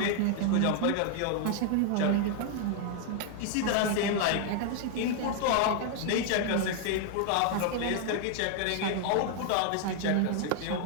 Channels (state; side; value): different; both; correlation 0.00